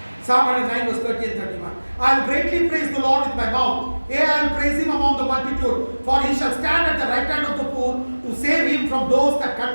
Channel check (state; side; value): inverted; both; correlation -1.00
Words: Psalm 109 verse 30 and 31. I will greatly praise the Lord with my mouth. Yea, I will praise him among the multitude, for he shall stand at the right hand of the poor to save him from those that